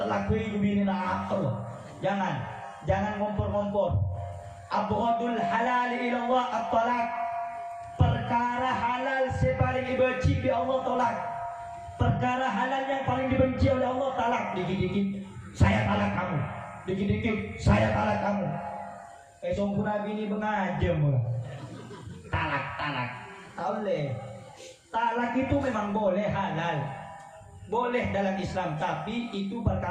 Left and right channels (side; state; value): both; identical; correlation 1.00